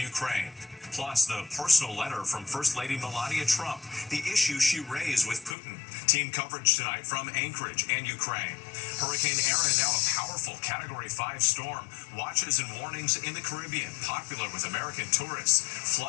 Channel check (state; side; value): drops out; right; at 5.6 s